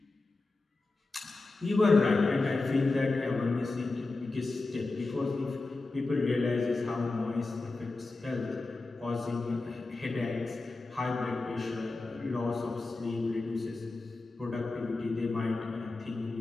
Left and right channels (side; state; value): right; quieter; 3.4 dB